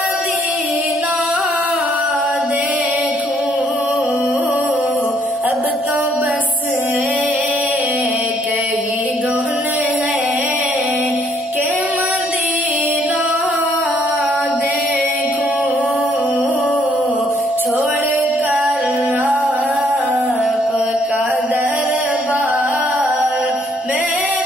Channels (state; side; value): normal; both; correlation 0.68